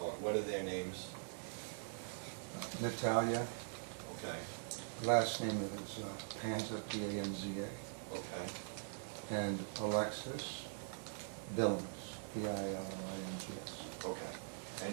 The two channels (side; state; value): left; silent; digital silence